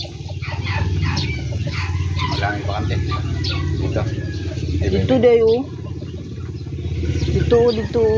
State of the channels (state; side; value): identical; both; correlation 1.00